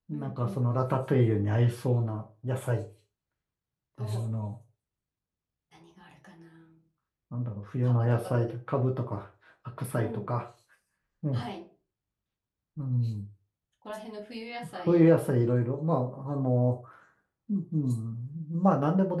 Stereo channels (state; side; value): identical; both; correlation 1.00